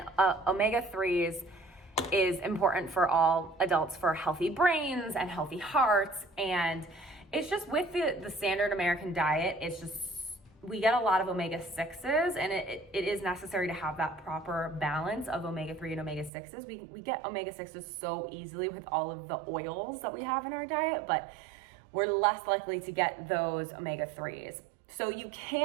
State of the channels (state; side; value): drops out; left; at 16.3 s